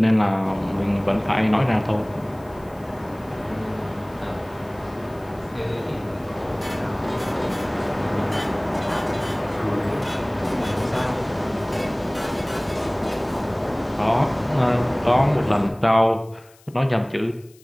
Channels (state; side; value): noise; left; hiss, 28 dB below the sound